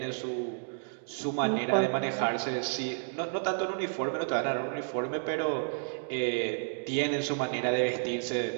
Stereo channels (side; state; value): left; silent; digital silence